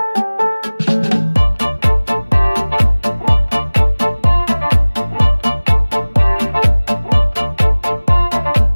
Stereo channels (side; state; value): both; inverted; correlation -1.00